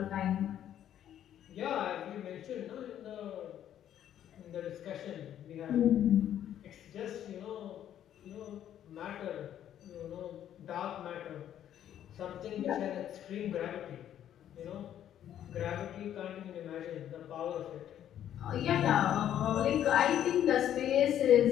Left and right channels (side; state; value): right; quieter; 10.7 dB